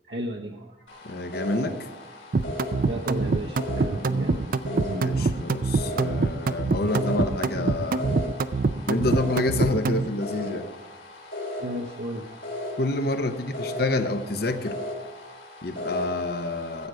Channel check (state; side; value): normal; both; correlation 0.52